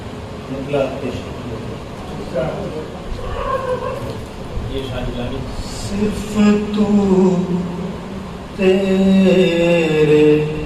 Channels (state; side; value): identical; both; correlation 1.00